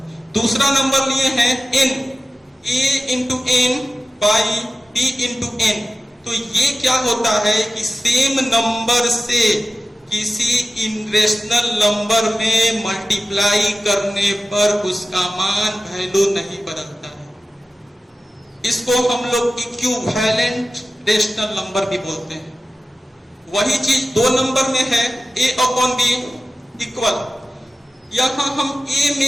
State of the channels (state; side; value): normal; both; correlation 0.94